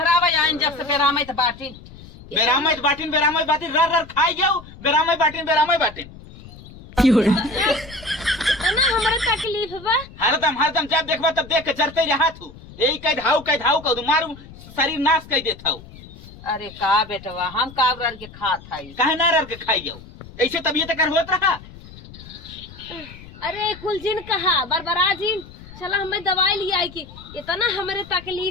आइन जब से बेरामत बाटी बेरामत बाटिन रर रर खाई जाओ बेरामत बाटिन इतना हमारे तकलीफ बा। हरदम जब देखबा तब देख के चरते रहा तू यही कह धाऊ कह मारू शरीर नाश कर देता हूँ। अरे का बेटवा हम काबर के खात हई कहे ना रर के खाई जाओ ऐसे तबीयत कर होत रहा। अरे कुल जिन कहा बरबरा जिन चला हमें दवाई लिया आई की इतना हमारे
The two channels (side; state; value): left; noise; rumble, 18 dB below the sound